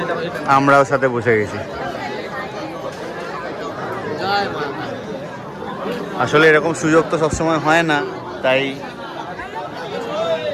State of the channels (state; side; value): identical; both; correlation 1.00